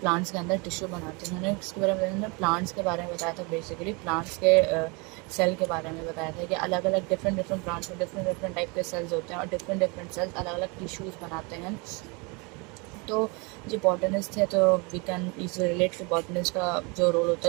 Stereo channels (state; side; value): quieter; left; 29.8 dB